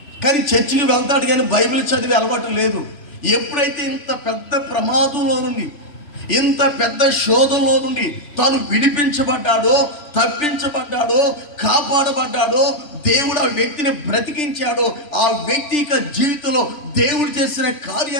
కానీ చర్చికి వెళ్తాడు కానీ బైబిల్ చదివే అలవాటు లేదు. ఎప్పుడైతే ఇంత పెద్ద ప్రమాదంలో నుండి, ఇంత పెద్ద శోధనలో నుండి తాను విడిపించబడ్డాడో, తప్పించబడ్డాడో, కాపాడబడ్డాడో, దేవుడు ఆ వ్యక్తిని బ్రతికించాడో, ఆ వ్యక్తి యొక్క జీవితంలో దేవుడు చేసిన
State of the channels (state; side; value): late; right; 3.1 ms